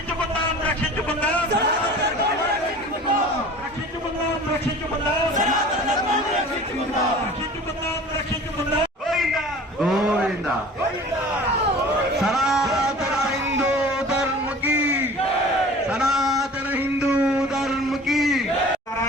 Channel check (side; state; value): both; normal; correlation 0.43